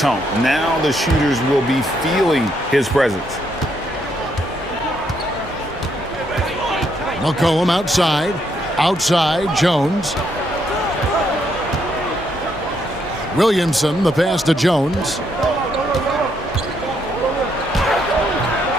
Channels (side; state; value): both; normal; correlation 0.75